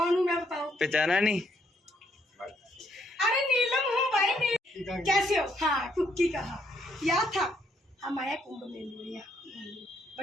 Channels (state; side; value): normal; both; correlation 0.72